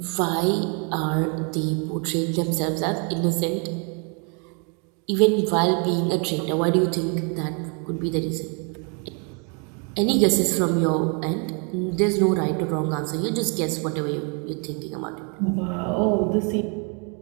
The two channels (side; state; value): left; quieter; 36.8 dB